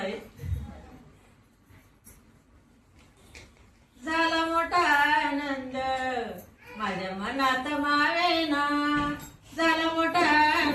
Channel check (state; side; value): identical; both; correlation 1.00